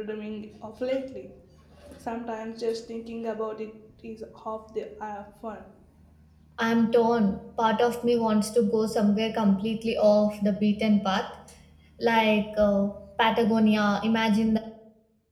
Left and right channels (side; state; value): both; identical; correlation 1.00